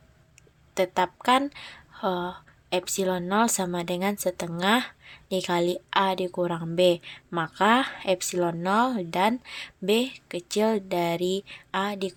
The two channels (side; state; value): both; identical; correlation 1.00